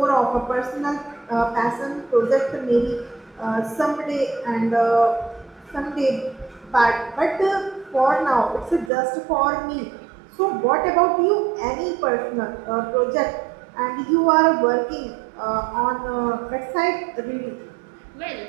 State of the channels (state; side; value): drops out; left; at 8.9 s